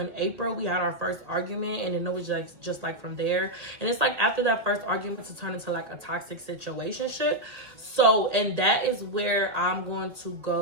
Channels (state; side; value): late; left; 1.8 ms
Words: April, we had our first argument, and then it was like just like from there. And it's like after that first argument to turn into like a toxic situationship. So, and that is where I'm going to